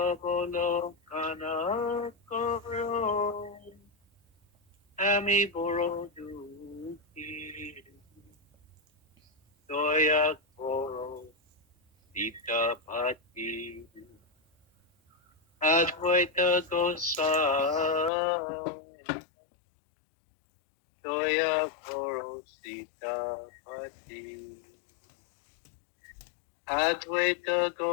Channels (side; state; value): right; drops out; at 18.1 s